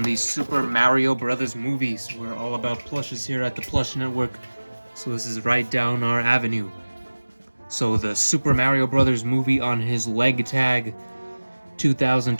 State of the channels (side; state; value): both; inverted; correlation -1.00